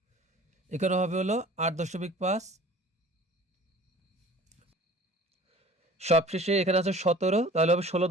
এখানে হবে হলো 8.5, সবশেষে এখানে আছে 17, তাহলে হবে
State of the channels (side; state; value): both; normal; correlation 0.46